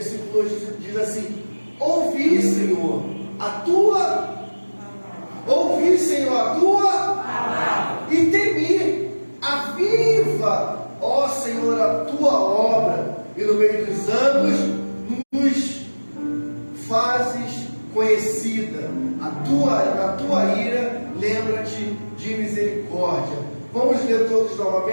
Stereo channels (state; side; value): inverted; both; correlation -1.00